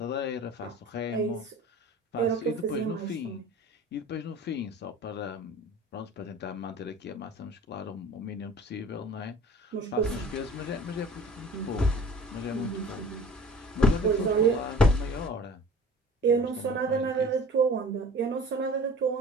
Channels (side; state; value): both; normal; correlation 0.44